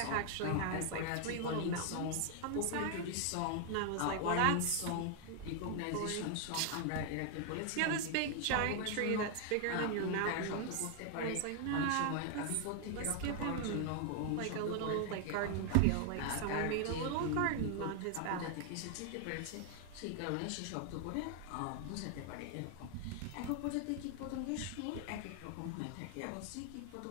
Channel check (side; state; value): both; different; correlation 0.00